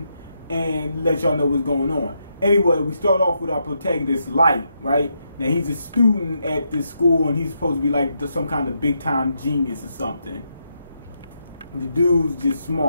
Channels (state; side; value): inverted; both; correlation -0.81